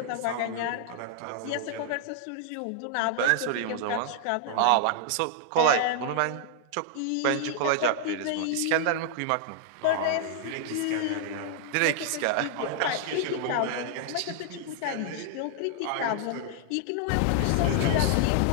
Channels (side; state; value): both; different; correlation -0.01